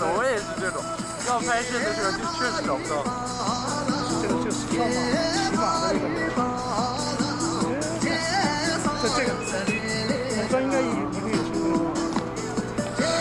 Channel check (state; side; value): identical; both; correlation 1.00